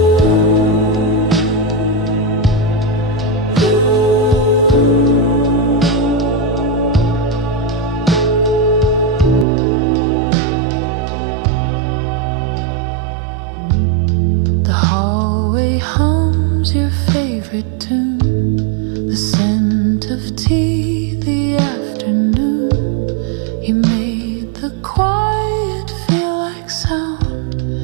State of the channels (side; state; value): left; drops out; at 9.5 s